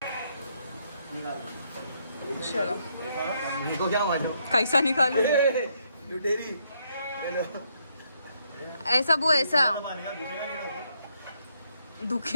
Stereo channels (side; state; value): both; inverted; correlation -0.75